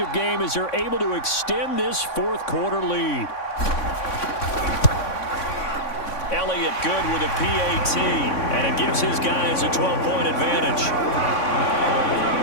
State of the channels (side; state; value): right; late; 3.5 ms